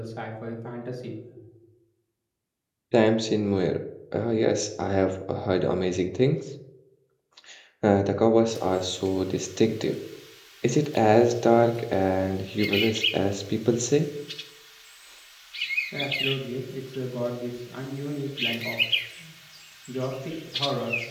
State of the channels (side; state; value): both; identical; correlation 1.00